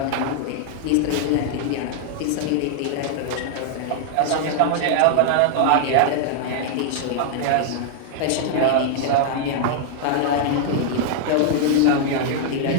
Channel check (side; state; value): both; different; correlation -0.01